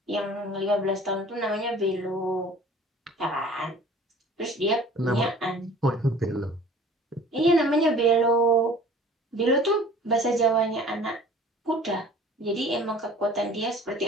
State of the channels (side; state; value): both; normal; correlation 0.48